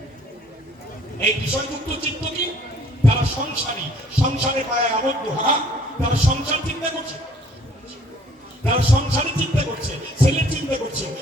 এই বিষয়যুক্ত চিত্ত কি তারা সংসারী সংসারে পায় আবদ্ধ তারা সংসার চিন্তা করছে তারা সংসারে চিন্তা করছে ছেলের চিন্তা করছে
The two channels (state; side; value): normal; both; correlation 0.58